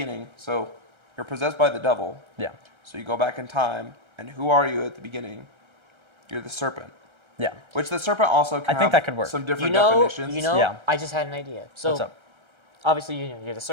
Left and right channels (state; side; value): late; left; 1.3 ms